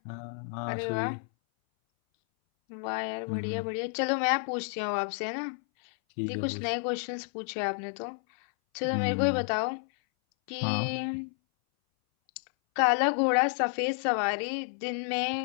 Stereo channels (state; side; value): silent; right; 58 dB below the other